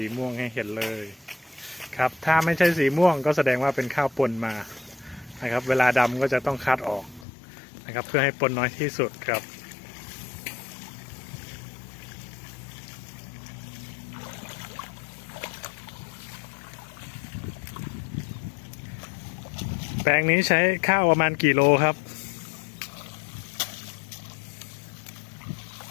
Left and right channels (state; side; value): drops out; right; at 7.2 s